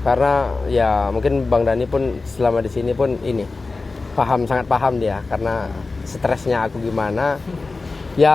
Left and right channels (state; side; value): quieter; right; 3.7 dB